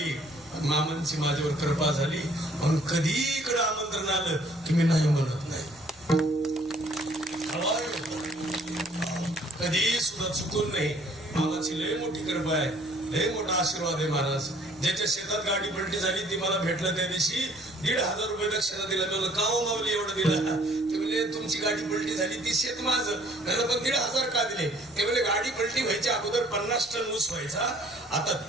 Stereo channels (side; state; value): left; noise; rumble, 29 dB below the sound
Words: मामांची माझ्यावर कृपा झाली. म्हणून कधी इकडे आमंत्रण आलं की मी नाही म्हणत नाही. कधी सुद्धा चुकून नाही. मामाची लय मोठी कृपा आहे, लय मोठा आशीर्वाद आहे महाराज. ज्याच्या शेतात गाडी पलटी झाली ती मला भेटलं त्या दिवशी, 1,500 रुपये दक्षिणा दिला. मी का हो माऊली एवढं दिला? ते म्हणजे तुमची गाडी पलटी झाली, ती शेत माझं. त्याला पण 1,500 का दिले? ते म्हणजे गाडी पलटी व्हायच्या अगोदर 50 टन ऊस व्हायचा, आता